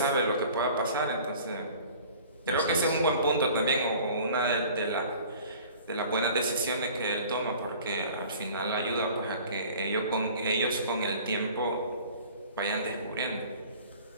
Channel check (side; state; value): both; inverted; correlation -0.47